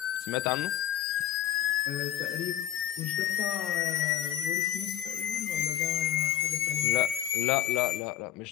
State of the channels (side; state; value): right; quieter; 11.7 dB